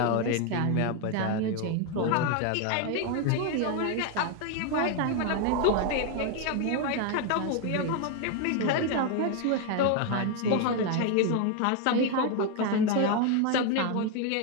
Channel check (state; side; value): different; both; correlation 0.01